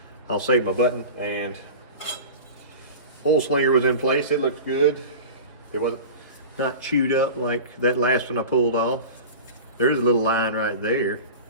I'll save my button, and oil slinger was in place. It looked good. It wasn't not chewed up like that last one I pulled off. There's a little line right there,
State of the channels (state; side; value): inverted; both; correlation -0.33